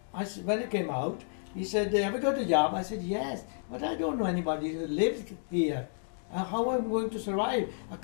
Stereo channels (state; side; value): silent; right; digital silence